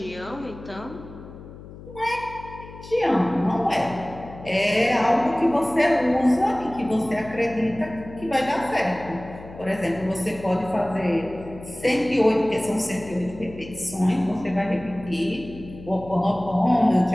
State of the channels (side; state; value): left; noise; hum, 16 dB below the sound